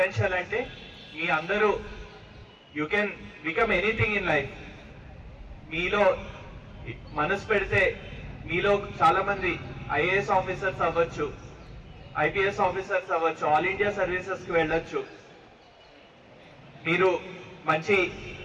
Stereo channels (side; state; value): both; identical; correlation 1.00